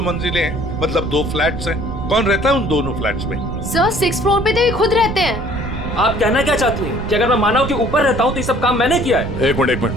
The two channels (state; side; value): noise; right; rumble, 7 dB below the sound